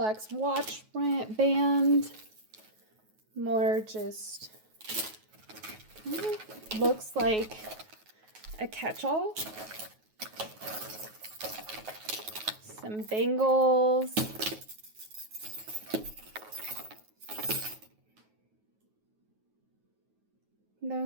watch band. More just looks like a catch-all. Some bangles.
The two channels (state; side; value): late; left; 9.3 ms